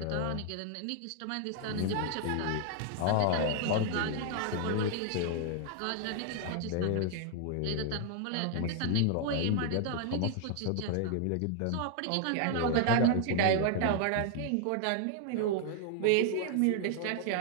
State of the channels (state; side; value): different; both; correlation 0.00